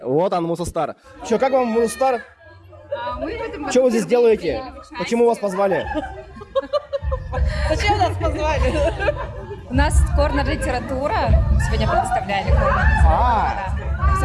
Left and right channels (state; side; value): identical; both; correlation 1.00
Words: Вот он, Мусостар. Че, как вам, Мусостар? Что вы здесь делаете? Почему вас позвали? Зачем нас позвали? У нас корнер-литература. Сегодня представляли корнер-литература.